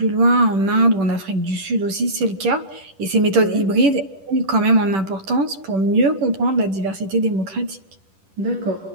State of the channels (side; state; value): left; late; 10 ms